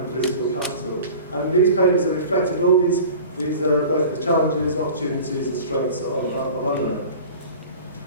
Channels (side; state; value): both; inverted; correlation -0.40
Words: political capital. And these papers have reflected all these both the challenges, opportunities and strengths of UNRWA.